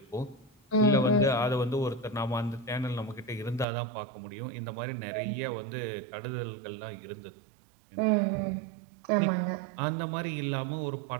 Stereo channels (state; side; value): drops out; left; at 3.7 s